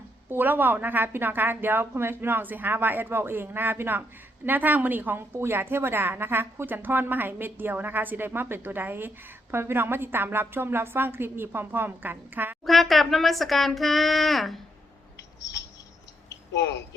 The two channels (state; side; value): normal; both; correlation 0.77